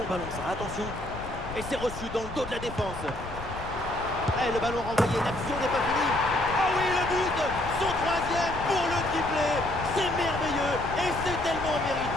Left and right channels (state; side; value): noise; left; rumble, 11 dB below the sound